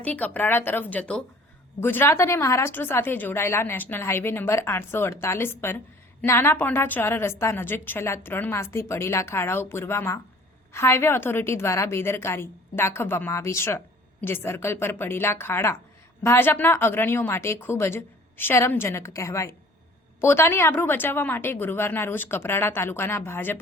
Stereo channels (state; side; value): normal; both; correlation 0.50